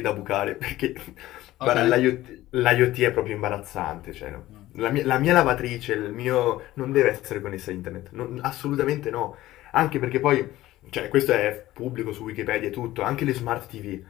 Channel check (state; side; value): quieter; right; 15.9 dB